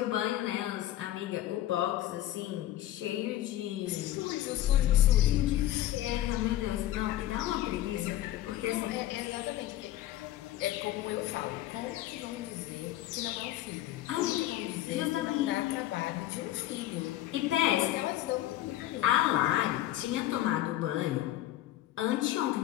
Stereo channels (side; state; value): right; quieter; 14.1 dB